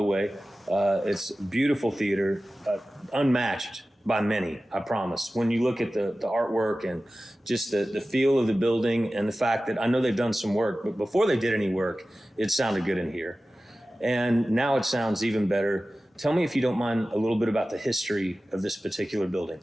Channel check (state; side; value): normal; both; correlation 0.96